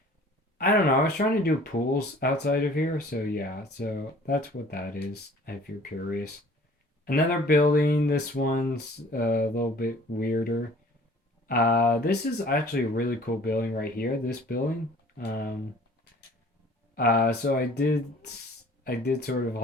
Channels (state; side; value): normal; both; correlation 0.51